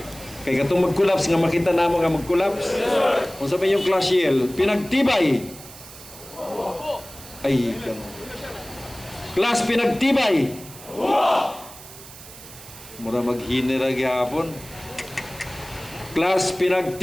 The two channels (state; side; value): noise; right; hiss, 17 dB below the sound